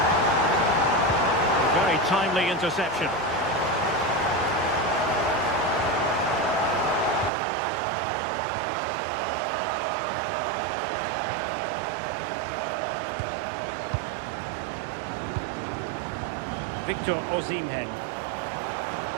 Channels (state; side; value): drops out; left; at 7.3 s